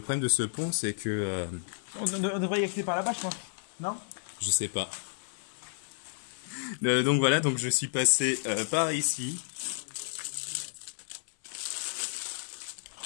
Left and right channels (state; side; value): silent; right; 57 dB below the other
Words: de ce pont c'est que On devrait y accéder par là-bas, je pense. Non? je sais pas. Donc voilà, donc je suis passé par ici.